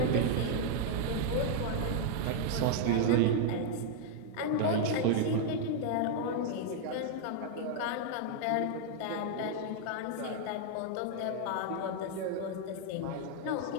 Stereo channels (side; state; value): both; different; correlation 0.00